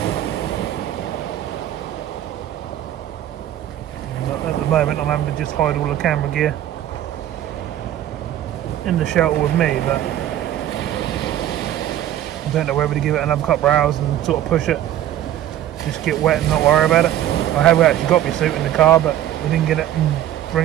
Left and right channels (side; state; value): left; quieter; 12.1 dB